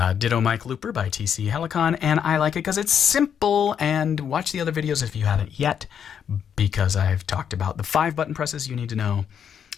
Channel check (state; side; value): quieter; right; 8.1 dB